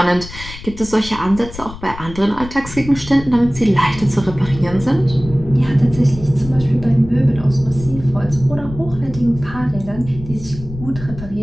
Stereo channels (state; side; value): noise; left; rumble, 13 dB below the sound